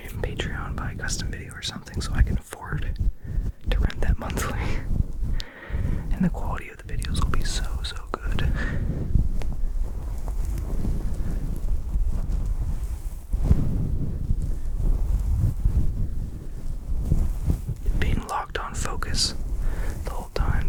on Patreon, buy a custom video or something so I can afford to rent that monthly. And the quality of the videos will be so good. Being locked on focus the whole time,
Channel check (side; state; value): both; identical; correlation 1.00